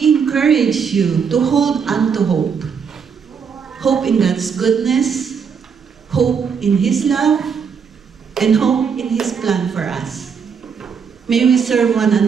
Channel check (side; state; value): left; quieter; 6.5 dB